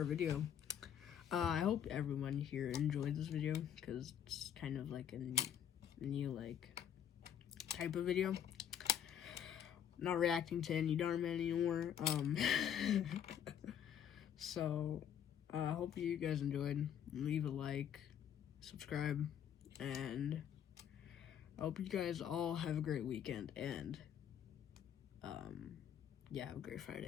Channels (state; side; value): quieter; right; 9.2 dB